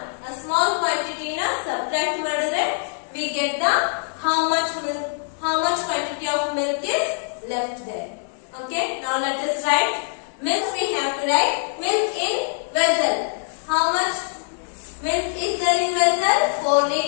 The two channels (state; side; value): silent; right; 61 dB below the other